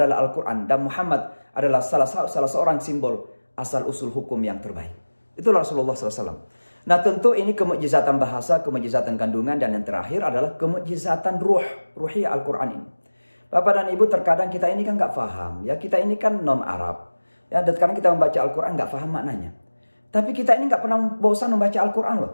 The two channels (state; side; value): inverted; both; correlation -1.00